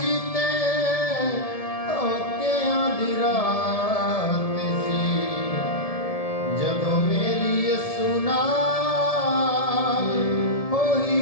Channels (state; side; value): late; right; 1.7 ms